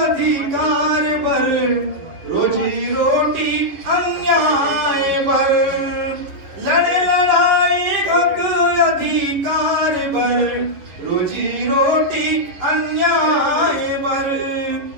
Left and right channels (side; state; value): left; late; 11 ms